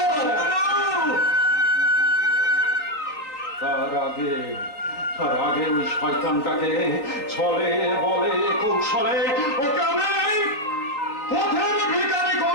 তার আগে ওই শয়তানটাকে ছলে বলে কৌশলে ওকে আমি পথের ভিখারি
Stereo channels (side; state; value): right; late; 3.7 ms